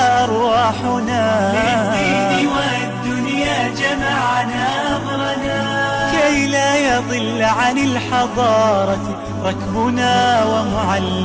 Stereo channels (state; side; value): identical; both; correlation 1.00